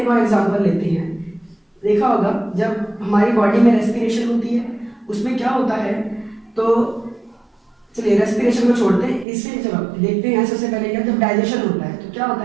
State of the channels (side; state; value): left; drops out; at 9.2 s